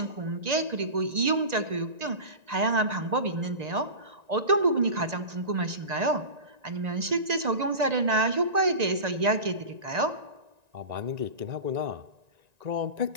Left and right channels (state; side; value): late; left; 1.9 ms